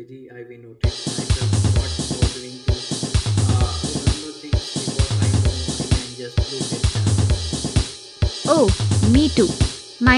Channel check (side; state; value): both; identical; correlation 1.00